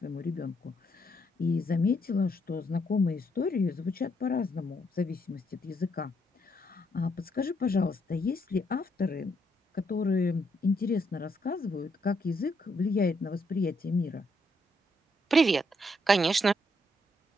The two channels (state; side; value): normal; both; correlation 0.75